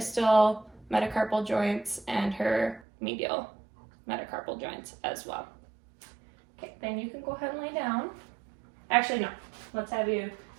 metacarpal joints and her medial metacarpal joints as well. Okay, then you can go ahead and lay down. Actually, no. Let's have you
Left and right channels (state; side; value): drops out; left; at 2.8 s